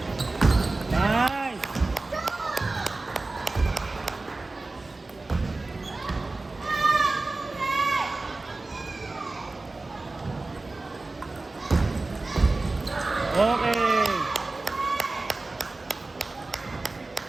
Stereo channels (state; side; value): quieter; left; 3.3 dB